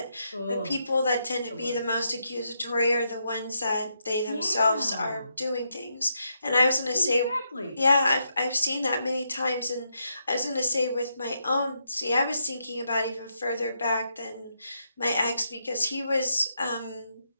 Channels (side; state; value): both; inverted; correlation -0.80